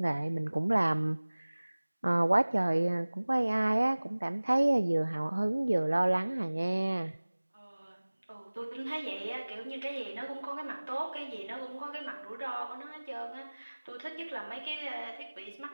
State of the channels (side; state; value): both; inverted; correlation -1.00